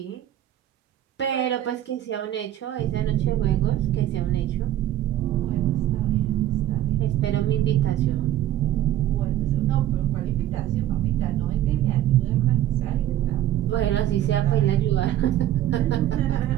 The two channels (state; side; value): quieter; left; 12.8 dB